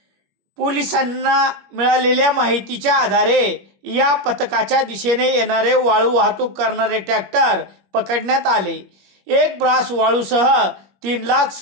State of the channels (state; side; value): late; left; 21 ms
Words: पोलिसांना मिळालेल्या माहितीच्या आधारे या पथकाच्या दिशेने येणारे वाळू वाहतूक करणारे ट्रॅक्टर पकडण्यात आले। एक ब्रास वाळूसह